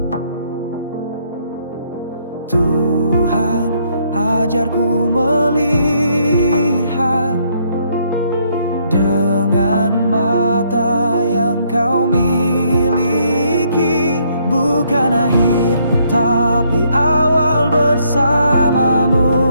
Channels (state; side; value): inverted; both; correlation -0.70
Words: Tuhan, ajarku melihat dengan mata yang kau miliki, bukan akhir tapi awal bersamamu.